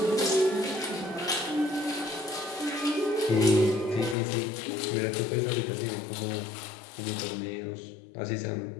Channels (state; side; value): drops out; right; at 4.2 s